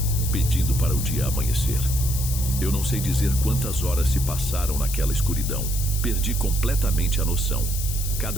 pedindo para o dia amanhecer. Eu não sei dizer quantas horas se passaram naquela escuridão. Perdi completamente a noção.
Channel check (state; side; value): noise; left; hiss, 6 dB below the sound